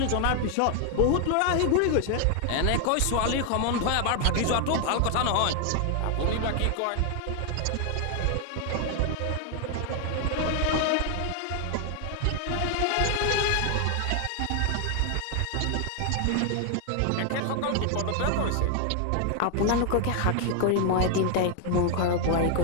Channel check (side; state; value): both; different; correlation 0.00